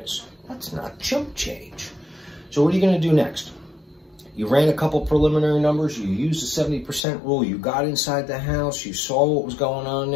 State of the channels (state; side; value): drops out; right; at 7.0 s